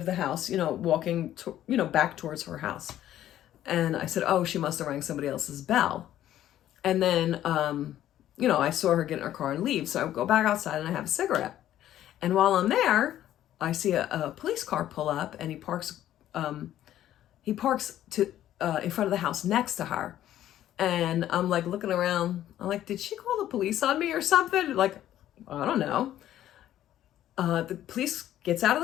the house, walking, back towards her house. And I said, oh, she must have rang somebody else's bell. And then, I saw her get in her car and leave. So I go back outside and I have a cigarette. And while I'm there, I see a police car pull up, and he parks in front of the house next to her. And I'm like looking around. I'm like, did she call the police on me or something? Like, I don't know. The police gets out of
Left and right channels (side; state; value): right; quieter; 12.3 dB